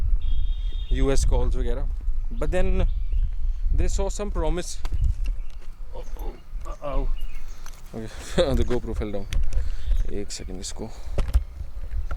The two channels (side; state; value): both; identical; correlation 1.00